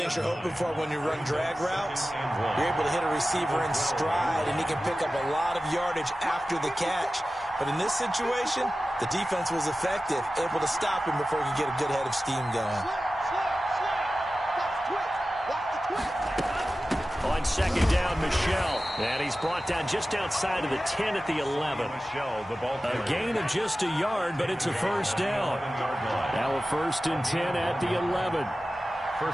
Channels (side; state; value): both; normal; correlation 0.95